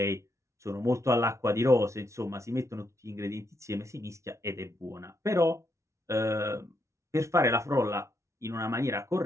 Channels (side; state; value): left; late; 0.14 ms